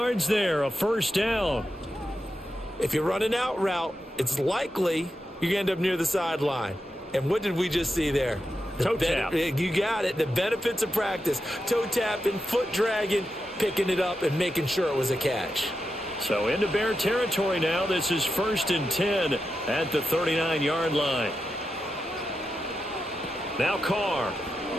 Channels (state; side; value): normal; both; correlation 0.88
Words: there, a first down. If you're running out route, it's likely you're going to end up near the sideline. And what did we just see there? Toe tap. You got it. The benefits of practice. Toe tapping, foot dragging, picking it up, and making sure it was a catch. So into Bear territory now. This is 1st and 10 at the 39-yard line. Now Carr.